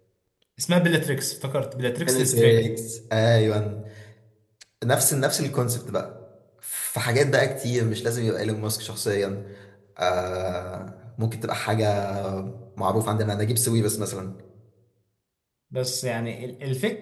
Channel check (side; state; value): both; identical; correlation 1.00